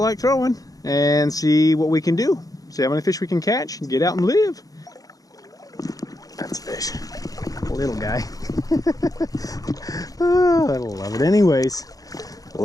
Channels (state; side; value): late; right; 0.17 ms